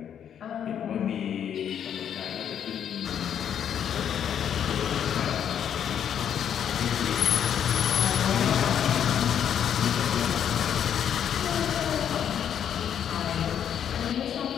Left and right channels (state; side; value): quieter; right; 9.0 dB